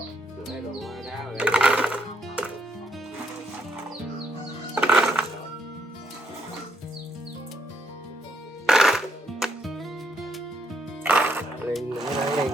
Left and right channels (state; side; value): normal; both; correlation 0.75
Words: Đá vào đây. Lên